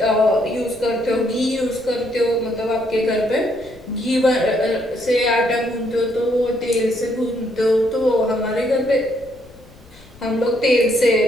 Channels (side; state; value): left; noise; rumble, 24 dB below the sound